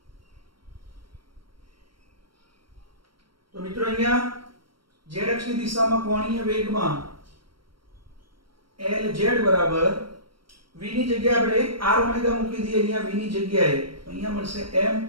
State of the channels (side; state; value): left; late; 0.73 ms